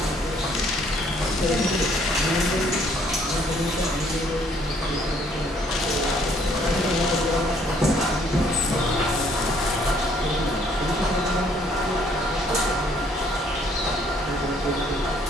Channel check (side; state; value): both; normal; correlation 0.64